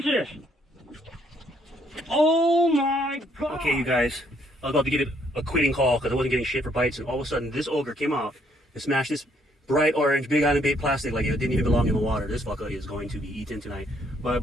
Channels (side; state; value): both; normal; correlation 0.68